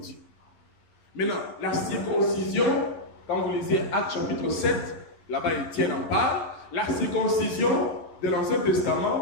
Maintenant, la circoncision, quand vous lisez Actes chapitre 7, là-bas Étienne en parle, la circoncision de l'Ancien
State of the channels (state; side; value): late; right; 11 ms